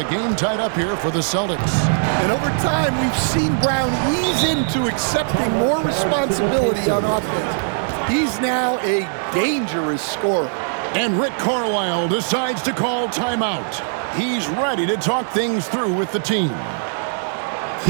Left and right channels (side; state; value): left; silent; digital silence